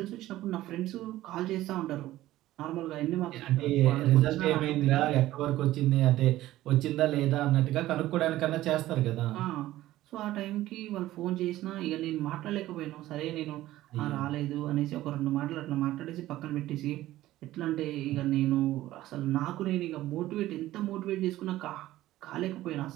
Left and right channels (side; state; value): left; quieter; 15.3 dB